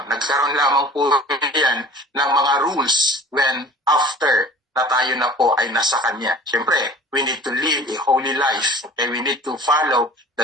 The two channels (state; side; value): normal; both; correlation 0.44